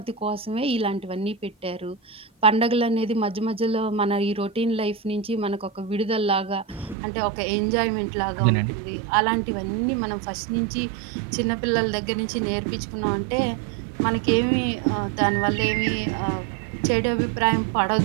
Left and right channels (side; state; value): left; drops out; at 7.0 s